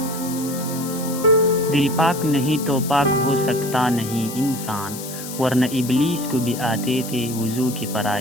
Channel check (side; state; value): left; noise; hiss, 11 dB below the sound